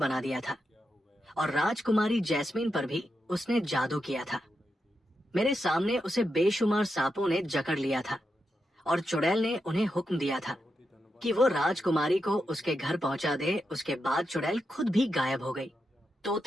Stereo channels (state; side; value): normal; both; correlation 0.86